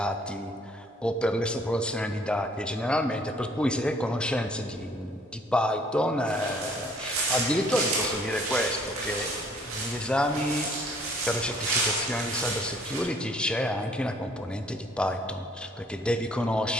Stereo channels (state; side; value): normal; both; correlation 0.60